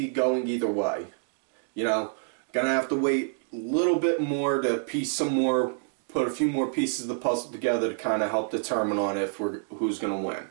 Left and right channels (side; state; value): left; silent; digital silence